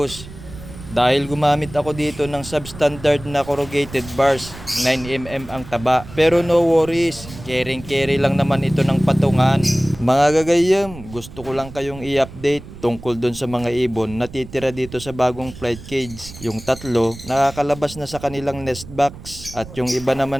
Dahil gumamit ako dito ng substandard na corrugated bars, 9mm ang taba. Pero no worries, carry lang naman ito ng patungan. Mga gagayam, gusto ko lang kayong i-update tungkol dun sa mga ibon na titira dito sa bagong flight cage. Yung 3, nakakalabas na sa kanilang nest box. At yung iba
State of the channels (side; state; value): right; noise; rumble, 15 dB below the sound